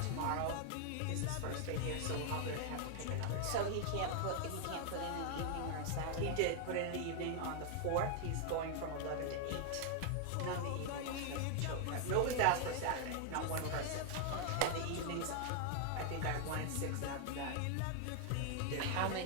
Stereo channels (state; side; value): different; both; correlation 0.00